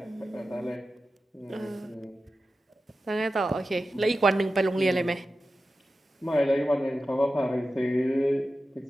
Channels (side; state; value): both; normal; correlation 0.93